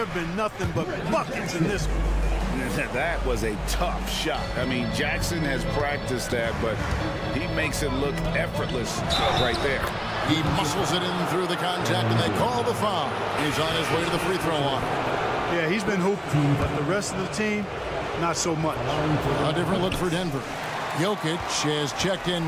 have been nothing but buckets in this one. That was a tough shot. I mean, Jackson has practiced that, but he makes it look effortless right there. He muscles it in through the contact, and they call the foul. He's on his way to the free throw line. Yeah, he's been hooping, but the rest of the team, not so much. A different look for Denver. Jokic has checked in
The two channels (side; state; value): both; identical; correlation 1.00